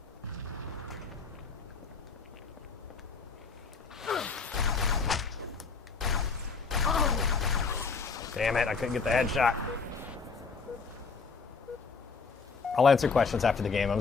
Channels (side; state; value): right; quieter; 4.8 dB